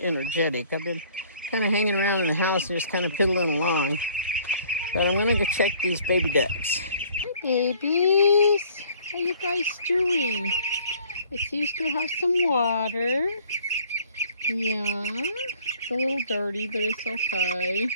energetic. I've been kind of hanging around in the house and just kind of piddling along. But I'm gonna go check these baby ducks. Hi babies, how you guys doing? I see you still have some water. Yeah, it's a little dirty, but it's okay.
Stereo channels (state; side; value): inverted; both; correlation -0.56